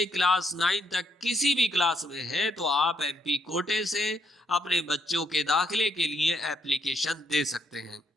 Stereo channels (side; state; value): both; normal; correlation 0.74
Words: क्लास 9 तक किसी भी क्लास में है तो आप एमपी कोटे से अपने बच्चों के दाखिले के लिए एप्लीकेशन दे सकते हैं।